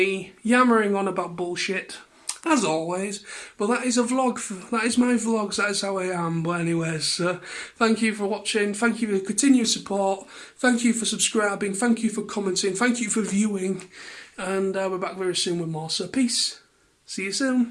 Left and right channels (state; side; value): identical; both; correlation 1.00